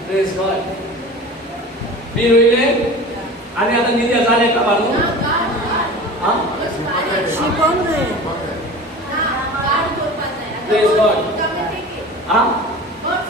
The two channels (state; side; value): normal; both; correlation 0.36